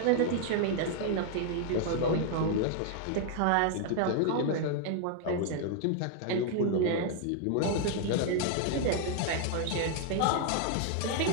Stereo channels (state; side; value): different; both; correlation 0.00